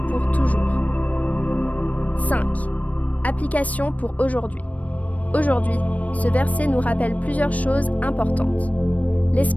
pour toujours. 5. Application pour aujourd'hui. Aujourd'hui, ce verset nous rappelle plusieurs choses importantes.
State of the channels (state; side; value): late; right; 0.069 ms